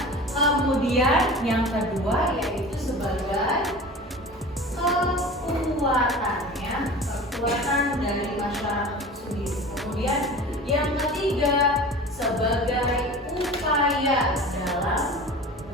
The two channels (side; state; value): both; normal; correlation 0.37